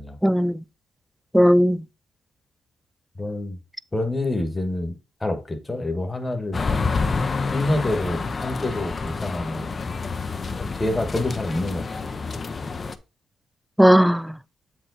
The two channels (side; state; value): both; normal; correlation 0.95